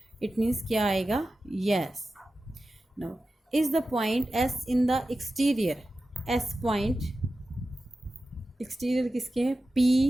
इट मीन्स क्या आएगा, yes. Now is the point S in the exterior, S point exterior किसके है,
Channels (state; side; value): normal; both; correlation 0.93